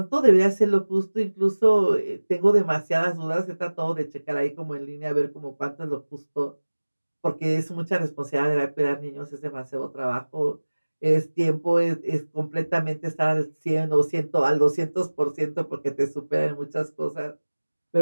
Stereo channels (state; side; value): inverted; both; correlation -1.00